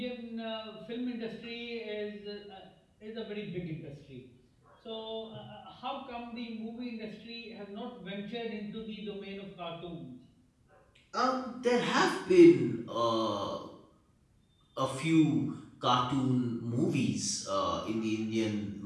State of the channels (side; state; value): both; identical; correlation 1.00